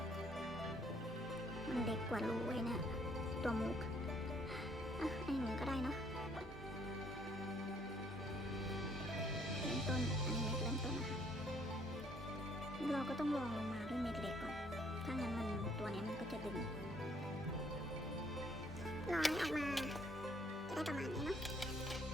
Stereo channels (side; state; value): both; normal; correlation 0.65